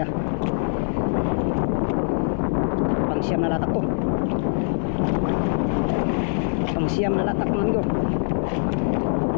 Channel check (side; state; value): right; silent; 62 dB below the other